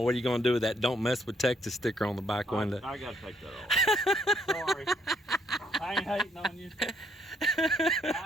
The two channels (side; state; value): both; normal; correlation 0.69